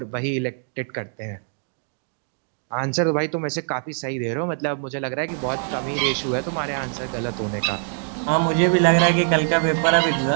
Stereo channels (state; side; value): silent; left; 63 dB below the other